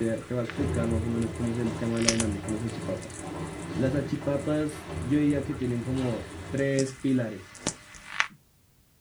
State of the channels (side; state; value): both; identical; correlation 1.00